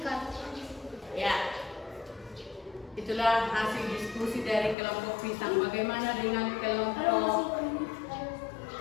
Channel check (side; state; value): right; drops out; at 4.8 s